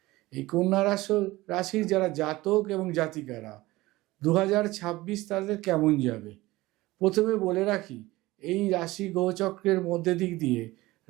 এই কন্যা রাশির যারা জাতক এবং জাতিকারা 2026 তাদের কেমন যাবে, প্রথমে বলে রাখি, এই রাশি গ্রহচক্রের মধ্যে দিক দিয়ে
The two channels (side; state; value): left; quieter; 19.1 dB